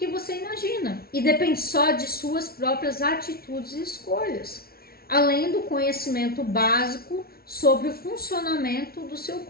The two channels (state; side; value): late; right; 0.44 ms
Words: você imagina e depende só de suas próprias atitudes e escolhas, além do conhecimento básico sobre o funcionamento do seu